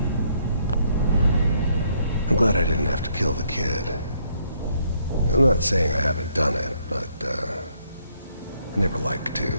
I'm glad I didn't have to kill the kid. I'm not saying I haven't done it, but, I never like to.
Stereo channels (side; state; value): both; inverted; correlation -0.70